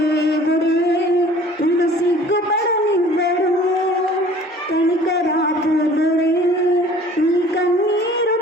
నిన్ను సిగ్గుపడనివ్వడు, కనికరాపురుడే నీ కన్నీరు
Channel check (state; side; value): normal; both; correlation 0.49